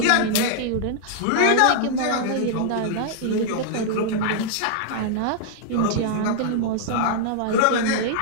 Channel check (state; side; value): different; both; correlation -0.01